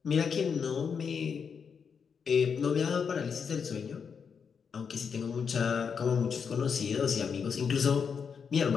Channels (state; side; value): quieter; right; 6.4 dB